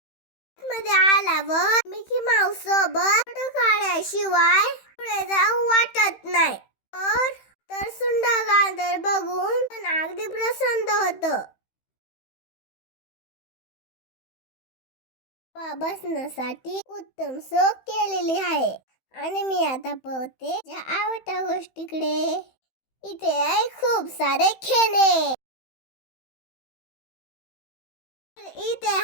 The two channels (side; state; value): right; late; 15 ms